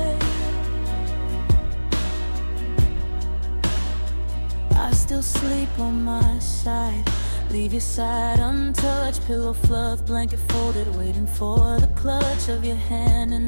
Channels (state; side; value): inverted; both; correlation -1.00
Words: I still sleep on my side, leave your side untouched, pillow fluff, blanket folded, waiting for the clutch of your hand in